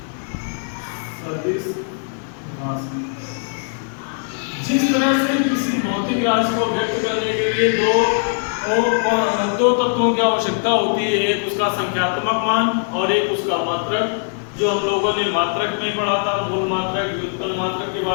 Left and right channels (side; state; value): right; silent; 65 dB below the other